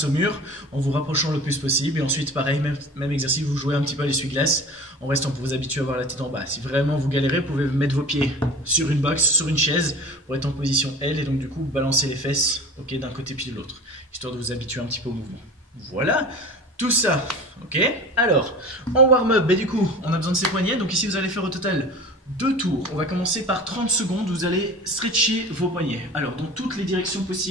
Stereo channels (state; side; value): normal; both; correlation 0.38